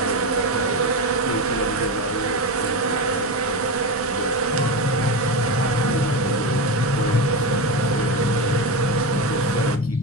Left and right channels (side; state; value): both; normal; correlation 0.18